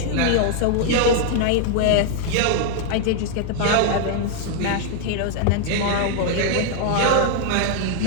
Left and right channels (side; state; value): both; different; correlation 0.00